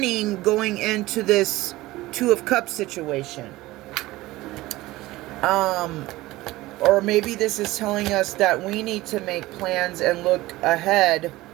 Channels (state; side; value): quieter; left; 18.4 dB